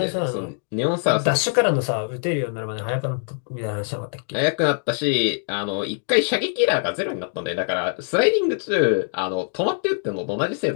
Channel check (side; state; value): right; silent; digital silence